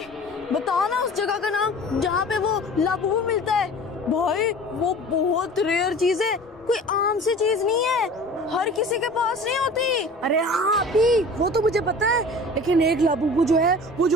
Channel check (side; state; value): both; normal; correlation 0.41